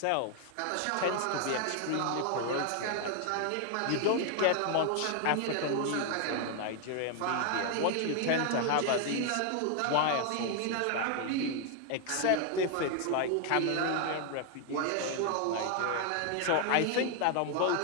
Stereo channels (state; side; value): different; both; correlation 0.00